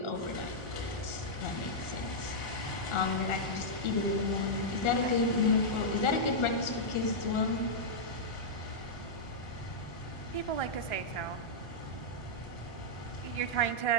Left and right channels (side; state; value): right; late; 1.3 ms